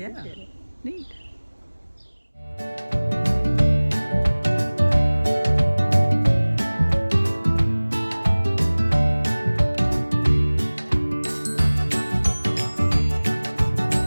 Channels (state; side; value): inverted; both; correlation -1.00